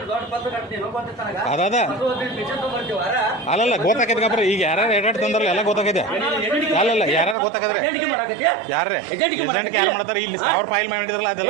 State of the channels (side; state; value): left; drops out; at 7.4 s